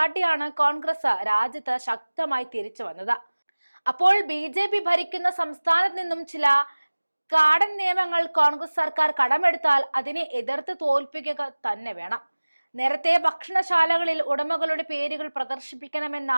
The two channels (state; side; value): inverted; both; correlation -1.00